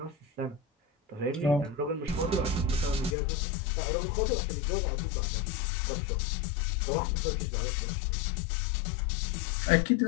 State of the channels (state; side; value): drops out; right; at 3.2 s